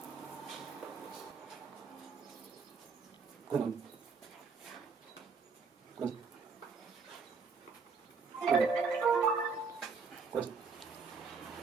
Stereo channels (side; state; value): left; quieter; 5.0 dB